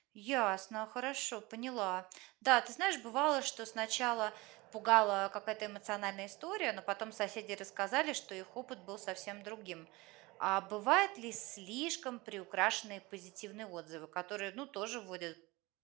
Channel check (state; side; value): quieter; left; 22.7 dB